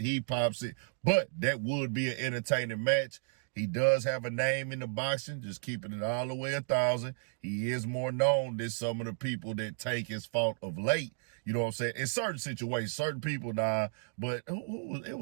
pops it, but that would be an entertaining match. He does have a name in the boxing, just keeping it all the way 1,000. He is more known than some of the people that Tank his fault of late. You know what I'm saying? In certain situations, certain people, but it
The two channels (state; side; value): silent; left; digital silence